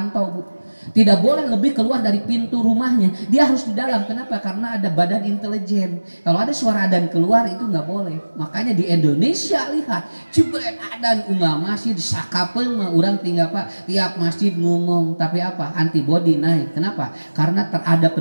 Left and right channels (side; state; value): both; inverted; correlation -1.00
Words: Bu. Tidak boleh lebih keluar dari pintu rumahnya. Dia harus di dalam. Kenapa? Karena ada badan intelijen. Kalau ada suara adan keluar itu nggak boleh. Makanya di Indonesia lihat, jebret adan unggah masjid sakapeun mah urang tinggal Pak tiap masjid ngomong. Tapi apa? Antibodi naik. Kenapa? Karena ada